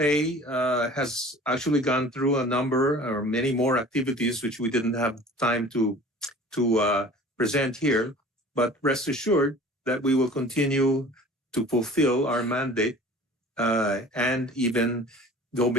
has actually gone through a number or many more activities which we didn't have time to present here, but rest assured that we will continue to fulfill our mandate and even go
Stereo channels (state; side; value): normal; both; correlation 0.44